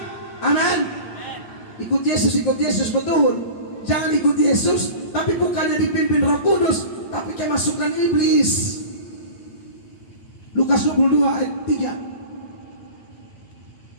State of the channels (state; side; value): late; right; 9.4 ms